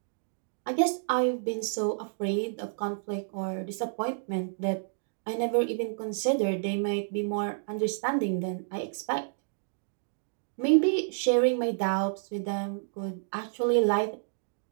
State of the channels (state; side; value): silent; left; digital silence